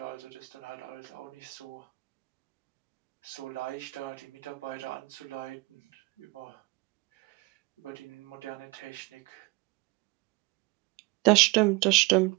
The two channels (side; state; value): left; quieter; 24.3 dB